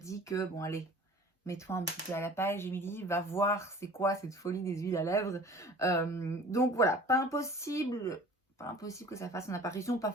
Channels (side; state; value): both; normal; correlation 0.46